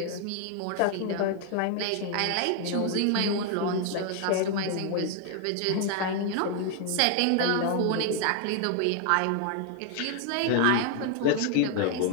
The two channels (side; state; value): both; different; correlation 0.00